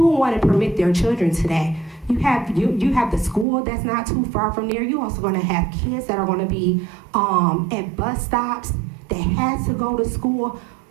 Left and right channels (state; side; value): drops out; left; at 3.5 s